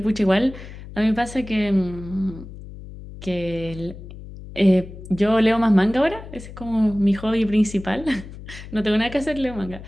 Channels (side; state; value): left; noise; hum, 14 dB below the sound